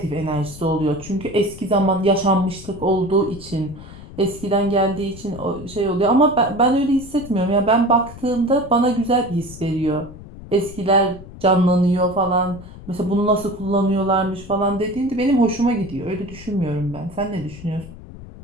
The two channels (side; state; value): left; noise; rumble, 16 dB below the sound